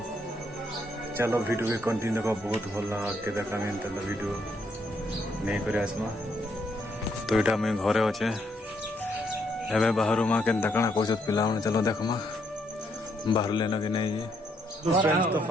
चलो वीडियो भी कंटिन्यू का बहुत भल लगा के देखा वीडियो नहीं कर आसमा। तो यहाँ मुझे घरे अच्छे एवं बाहर माँ के कण कौन पिला चलो देखमा बाहर लेना कि नहीं। तो फ्रेंड्स तो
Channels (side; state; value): both; normal; correlation 0.74